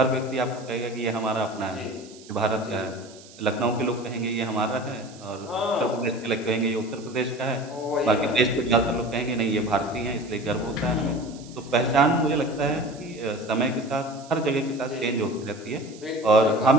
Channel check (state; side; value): noise; right; hiss, 21 dB below the sound